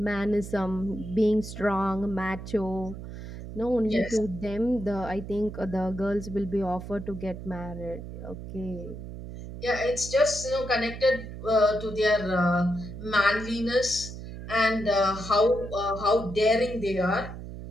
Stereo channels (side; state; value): right; noise; hum, 10 dB below the sound